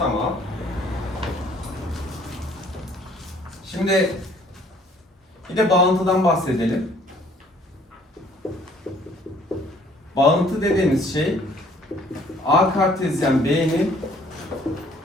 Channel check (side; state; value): both; normal; correlation 0.59